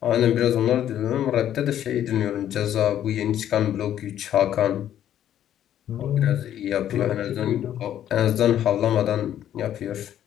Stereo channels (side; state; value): right; quieter; 11.0 dB